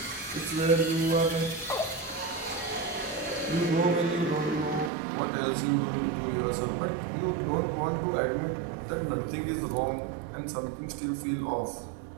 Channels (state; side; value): drops out; left; at 4.9 s